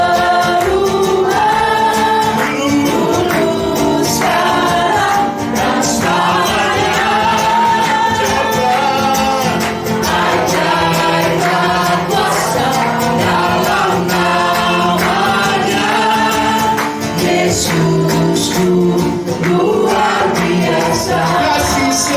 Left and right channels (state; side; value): identical; both; correlation 1.00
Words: Yesusku luar biasa,